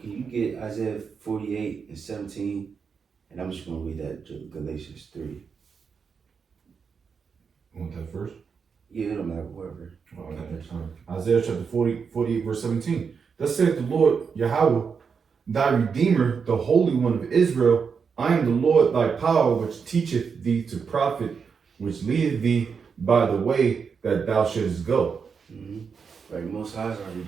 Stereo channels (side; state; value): left; quieter; 6.0 dB